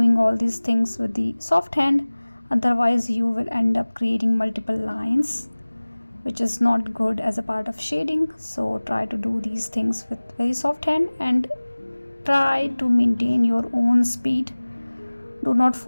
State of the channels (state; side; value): inverted; both; correlation -1.00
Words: all these things with the soft hand, otherwise you will end up creating multiple lines, which is not good as a part of shading. So try to do these things with very soft hand and try to maintain your own speed. Do not